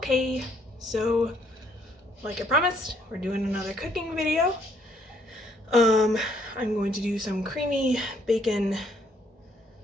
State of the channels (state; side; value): normal; both; correlation 0.68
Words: so like I promised, we're doing another cooking video. I'm going to do some creamy bacon